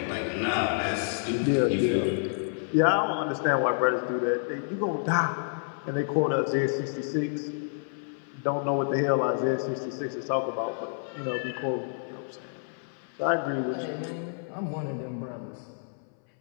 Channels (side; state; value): right; silent; 59 dB below the other